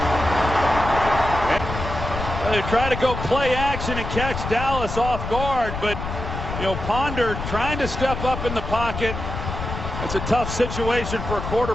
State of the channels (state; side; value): noise; left; rumble, 6 dB below the sound